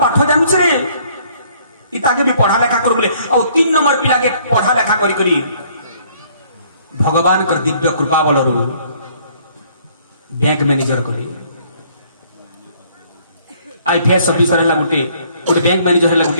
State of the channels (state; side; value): inverted; both; correlation -0.62